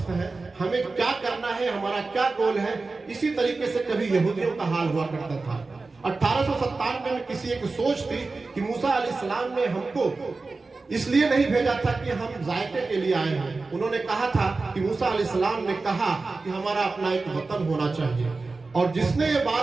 है, हमें क्या करना है, हमारा क्या गोल है, इसी तरीके से कभी यहूदियों का हाल हुआ करता था। 1897 में किसी एक सोच थी कि मूसा अलैहिस्सलाम ने हमको इसलिए नहीं भेजा था कि हम जायके के लिए आए हैं। उन्होंने कहा था कि मूसा अलैहिस्सलाम ने कहा कि हमारा अपना एक वतन होना चाहिए। और जिसने ये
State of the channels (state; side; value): quieter; left; 3.8 dB